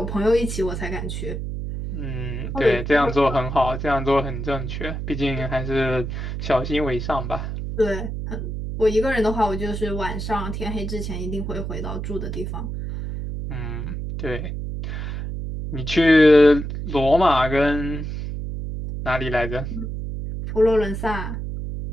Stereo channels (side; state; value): right; noise; hum, 5 dB below the sound